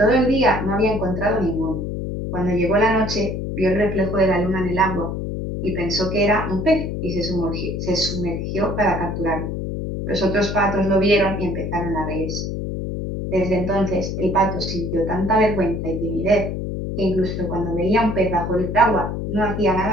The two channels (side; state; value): left; noise; hum, 4 dB below the sound